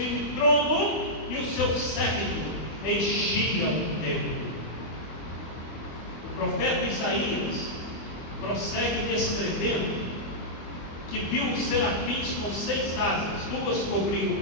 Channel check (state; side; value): late; right; 24 ms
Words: trono, e o seu séquito enchia o templo. O profeta Isaías prossegue descrevendo que viu os serafins com 6 asas, 2 cobriam o